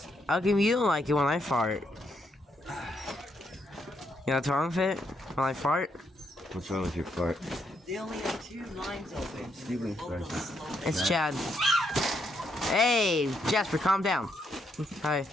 How come you don't like it when I fart? You know what's wrong with it? When I fart? What's wrong with your fart? They only have 2 lines open. Steven Both Fresh. of them slow. It's Chad. Hey, Jasper, calm down. Hi.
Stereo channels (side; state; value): both; normal; correlation 0.77